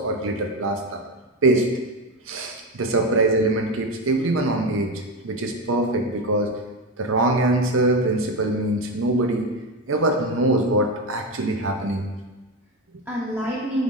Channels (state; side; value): normal; both; correlation 0.16